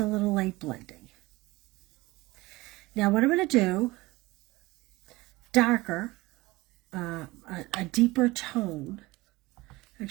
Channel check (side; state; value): left; quieter; 20.8 dB